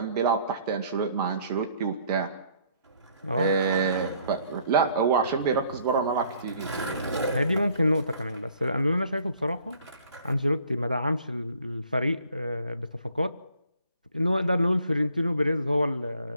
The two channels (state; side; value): inverted; both; correlation -0.61